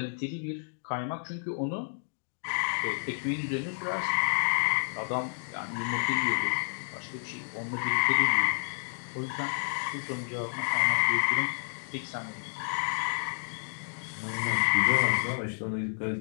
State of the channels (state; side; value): silent; right; digital silence